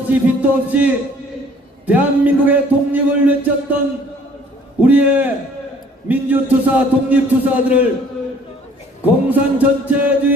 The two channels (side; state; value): both; normal; correlation 0.56